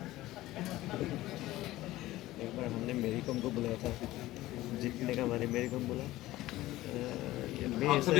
एक बार हमने मेरी कॉम को बुलाया था जीतने का हमारे मेरी कॉम बोला आप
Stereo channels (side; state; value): right; quieter; 16.7 dB